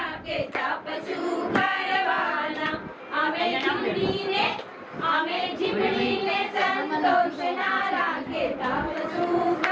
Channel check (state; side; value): identical; both; correlation 1.00